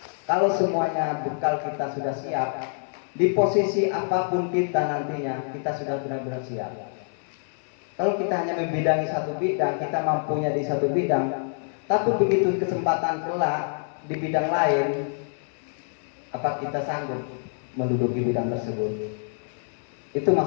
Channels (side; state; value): right; silent; 59 dB below the other